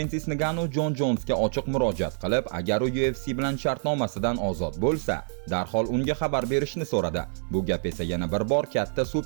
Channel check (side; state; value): left; silent; 60 dB below the other